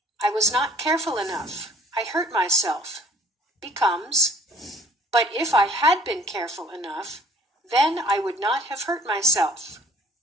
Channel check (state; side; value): normal; both; correlation 0.54